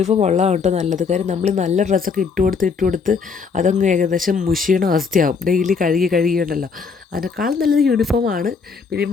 ഉള്ളതാണ് കേട്ടോ നല്ലത്. കാര്യം നമ്മൾ നല്ല ഡ്രസ്സൊക്കെ ഇട്ടുകൊടുത്ത് അതങ്ങ് ഏകദേശം മുഷിയണ അവസ്ഥയാവും. ഡെയിലി കഴുകിയുണ്ടല്ലോ. അതിനേക്കാൾ നല്ലത് യൂണിഫോമാണ്. പിന്നെ ഈ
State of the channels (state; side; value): quieter; right; 5.3 dB